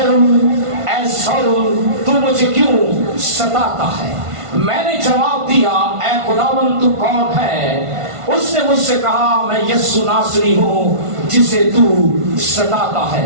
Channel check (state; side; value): late; left; 1.5 ms